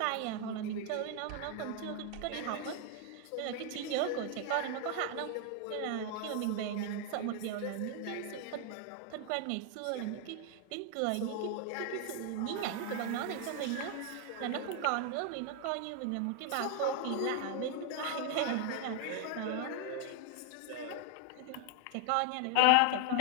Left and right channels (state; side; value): different; both; correlation 0.00